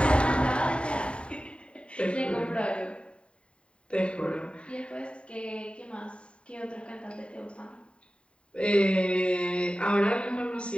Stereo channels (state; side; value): late; right; 0.056 ms